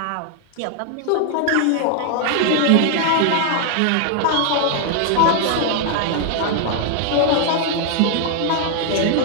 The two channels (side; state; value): both; different; correlation 0.00